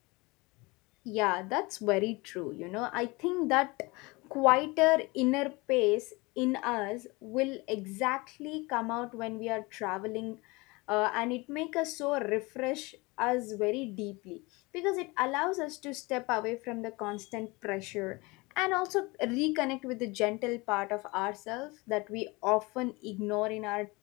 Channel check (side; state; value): right; quieter; 24.7 dB